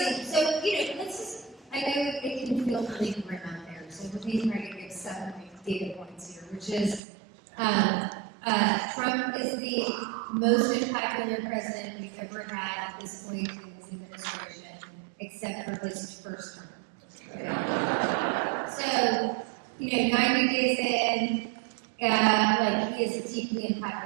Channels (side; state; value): left; drops out; at 7.0 s